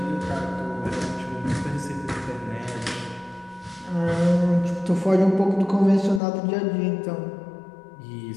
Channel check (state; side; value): drops out; right; at 6.2 s